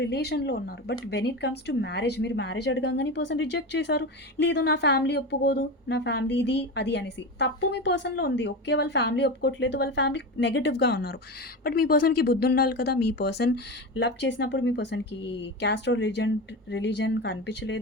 ఉన్నారు. But when it comes to marriage, మీరు మ్యారేజ్ అడగంగానే ఈ పర్సన్ రిజెక్ట్ చేశారు. లేదు నా ఫ్యామిలీ ఒప్పుకోదు, నా ఫ్యామిలీ ఇది, అది అనేసి. తప్పు మీ పర్సన్‌లో ఉంది. ఓకే. వాళ్ళ ఫ్యామిలీ ఒప్పుకోవట్లేదు, వాళ్ళ ఫ్యామిలీ నెగెటివ్‌గా ఉన్నారు. బట్ మీ పర్సన్‌కి బుద్ధి ఉండాలి కదా! మీ పర్సన్ లవ్ చేసినప్పుడు మీ పర్సన్‌కి క్యాస్ట్ ఆర్ రిలీజియన్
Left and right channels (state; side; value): normal; both; correlation 0.23